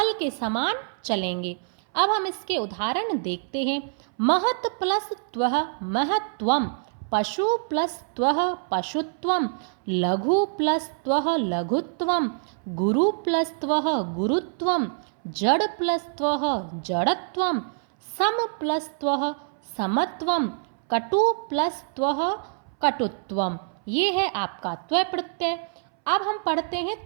के समान चलेंगे। अब हम इसके उदाहरण देखते हैं। महत् प्लस त्वः महत्त्वम, पशु प्लस त्वः पशुत्वम, लघु प्लस त्वः लघुत्वम, गुरु प्लस त्वः गुरुत्वम, जड़ प्लस त्वः जड़त्वम, सम प्लस त्वः समत्वम, कटु प्लस त्वः कटुत्वम। ये है आपका त्वय प्रत्यय। अब हम पढ़ते हैं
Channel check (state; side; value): silent; left; 61 dB below the other